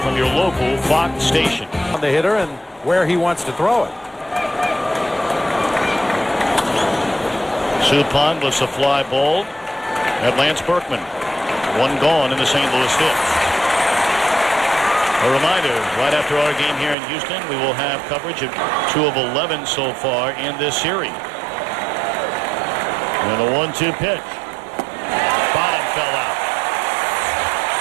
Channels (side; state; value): left; drops out; at 16.9 s